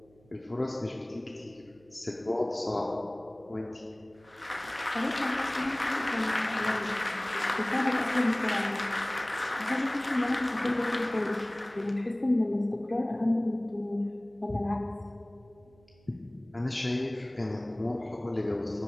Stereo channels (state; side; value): noise; right; hum, 29 dB below the sound